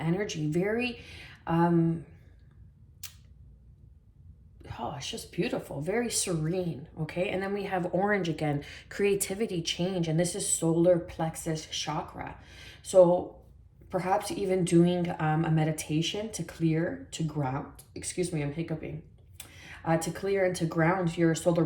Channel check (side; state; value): both; identical; correlation 1.00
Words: Oh, it's just beautiful, very serene, okay? And then we have orange again, creativity, change, and this is solar plexus chakra. So perhaps even doing a meditation to clear, to ground, excuse me, I'm hiccuping, to clear and to ground your solar